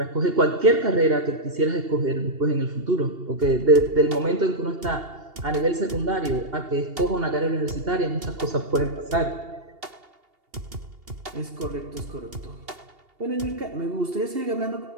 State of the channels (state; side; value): late; left; 2.8 ms